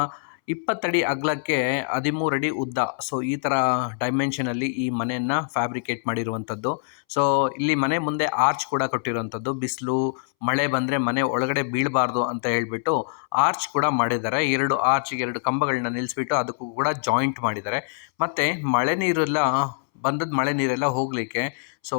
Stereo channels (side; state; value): right; silent; 62 dB below the other